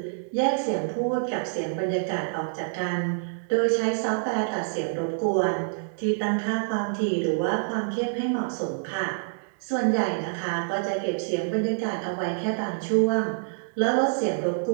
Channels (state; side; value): silent; left; digital silence